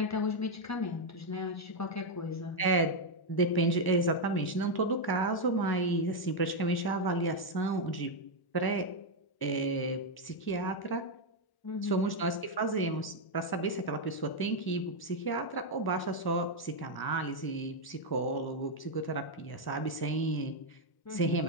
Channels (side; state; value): right; late; 1.0 ms